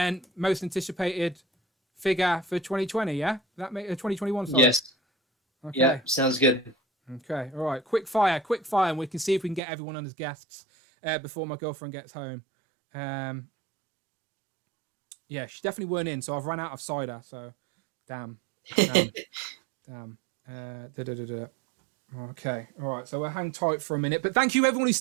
most anticipated figure for 2020. Yeah, that make 2021. Sorry. Yes. Okay. Yeah, sounds good. Okay. All right. Quick fire, and we can see if we can get everyone on as guests before my girlfriend gets home. Yeah, she definitely weren't in, so I've run out of cider. So, damn. Okay, all right. So we'll hang tight for a minute, but thank you everyone who's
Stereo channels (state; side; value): drops out; left; at 9.6 s